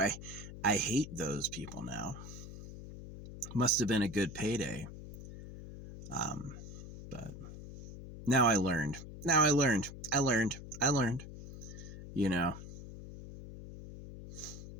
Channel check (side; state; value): left; noise; hum, 12 dB below the sound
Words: hate those people now. Must have been a good payday. But now I learned. I learned.